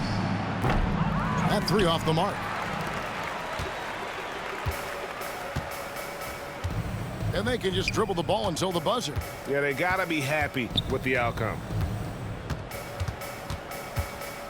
That 3 off the mark. and they can just dribble the ball until the buzzer. Yeah, they got to be happy with the outcome.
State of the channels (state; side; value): identical; both; correlation 1.00